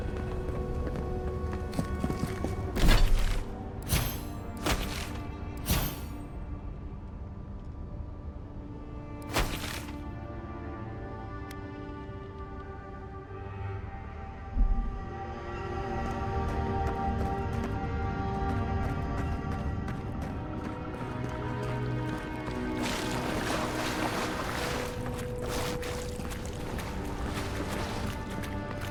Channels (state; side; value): identical; both; correlation 1.00